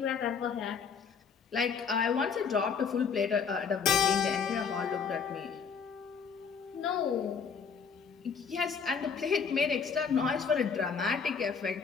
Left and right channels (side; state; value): right; quieter; 6.1 dB